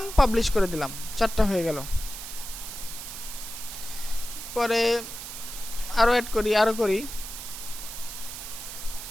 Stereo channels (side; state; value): right; noise; hiss, 9 dB below the sound